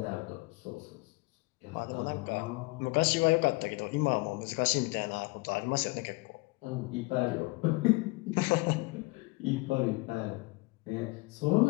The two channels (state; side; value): quieter; right; 24.9 dB